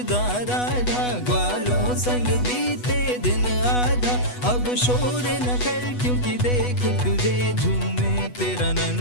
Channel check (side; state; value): right; late; 8.1 ms